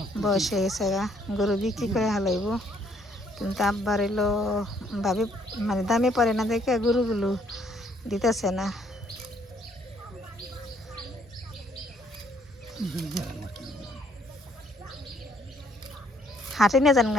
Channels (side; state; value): both; normal; correlation 0.66